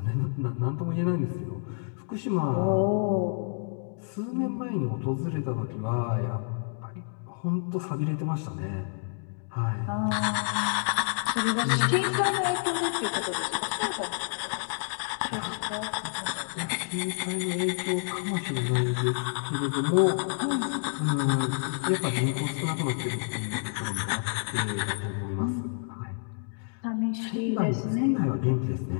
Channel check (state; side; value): silent; right; 59 dB below the other